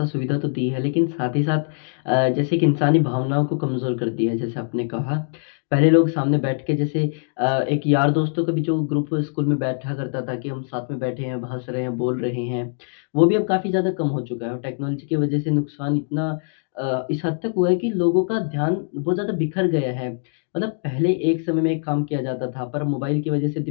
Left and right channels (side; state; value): right; silent; digital silence